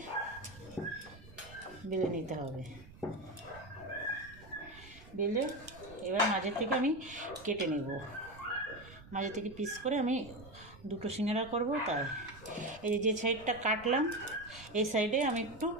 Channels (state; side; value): noise; right; rumble, 19 dB below the sound